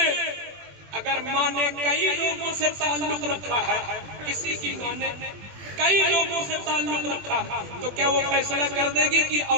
اگر ماں نے کئی لوگوں سے تعلق رکھا ہے, کسی کی ماں نے کئی لوگوں سے تعلق رکھا, تو کیا وہ فیصلہ کر دے گی کہ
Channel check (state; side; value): late; left; 21 ms